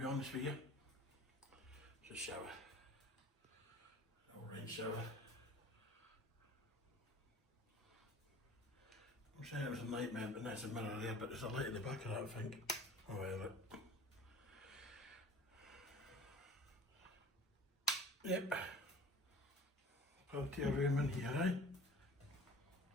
honest with you. It's a shower. An rain shower. I'm saying it was a nightmare, but there's a mirror there, but there's a light at the back of that, I think. Oh well, look. Yep. Plenty of room in here, eh?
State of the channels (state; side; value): normal; both; correlation 0.44